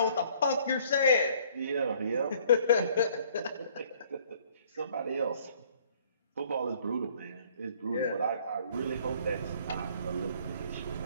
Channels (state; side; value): inverted; both; correlation -0.59